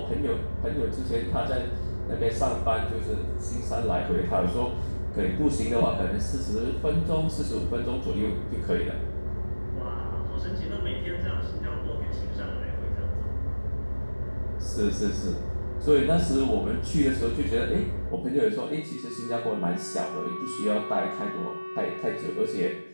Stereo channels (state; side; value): inverted; both; correlation -1.00